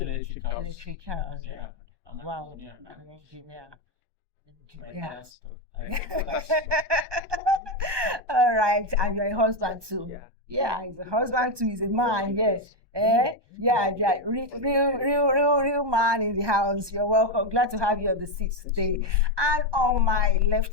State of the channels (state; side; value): late; left; 1.2 ms